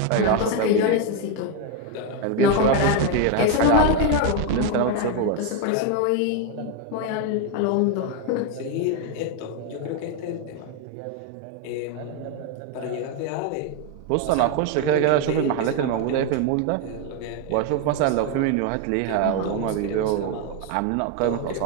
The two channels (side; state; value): both; different; correlation 0.01